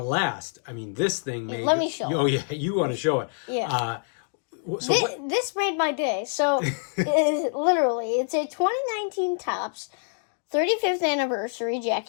this thing made... Let me show it. Oh, yeah, you want to show it. Yeah. This made my day. So, literally, it's a 2019 Topps 35th anniversary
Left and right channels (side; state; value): right; silent; digital silence